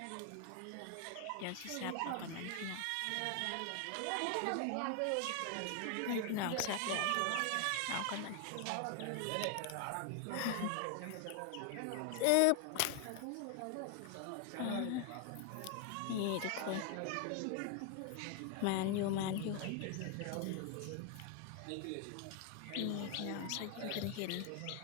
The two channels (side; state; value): both; different; correlation 0.00